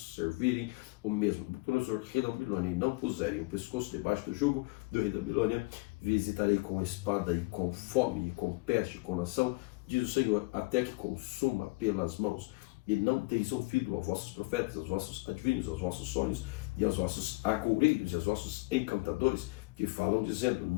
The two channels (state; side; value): quieter; right; 25.8 dB